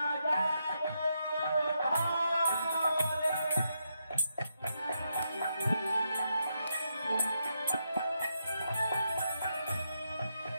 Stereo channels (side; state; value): both; inverted; correlation -0.82